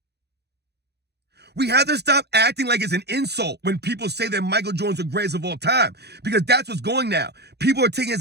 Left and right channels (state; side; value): late; left; 0.48 ms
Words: We have to stop acting like it's an insult when people say that Michael Jordan's the greatest of all time, because that's what's going now. People are taking it as